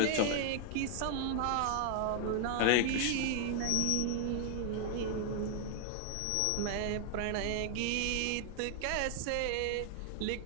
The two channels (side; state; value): both; different; correlation 0.00